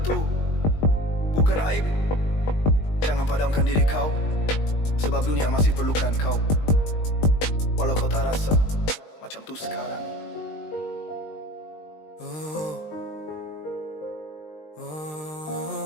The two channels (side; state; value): right; late; 19 ms